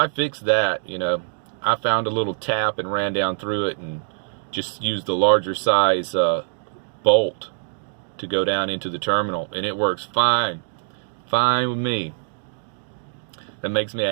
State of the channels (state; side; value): silent; left; digital silence